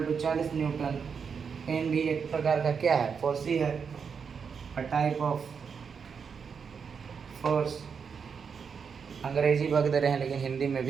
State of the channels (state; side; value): quieter; left; 6.2 dB